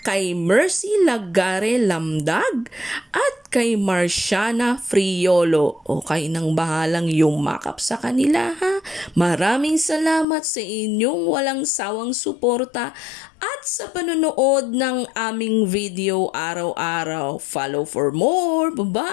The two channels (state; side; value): drops out; right; at 10.2 s